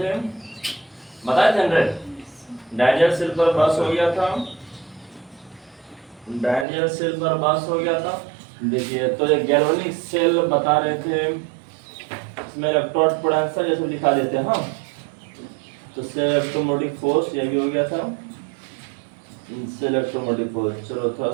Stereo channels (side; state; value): left; drops out; at 6.7 s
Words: बताए थे डैनियल सेल पर बस हो गया था, डैनियल सेल पर बस हो गया था। देखिए तो ये गैल्वेनिक सेल बता रहे थे, इसमें इलेक्ट्रोड पोटेंशियल जैसे लिखा देते हैं। हाँ तो से इलेक्ट्रोमोटिव फोर्स ये भी हो गया था, से इलेक्ट्रोमोटिव फोर्स। चलो थोड़ा